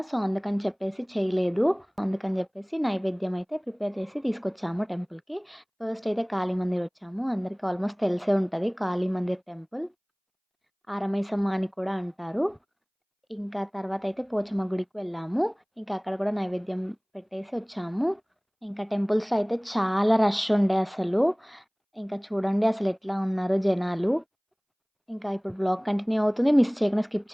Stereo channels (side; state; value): both; identical; correlation 1.00